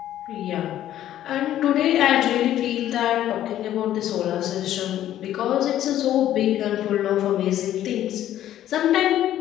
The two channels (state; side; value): quieter; right; 12.2 dB